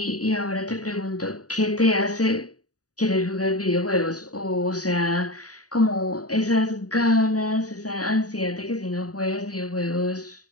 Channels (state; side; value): late; right; 0.67 ms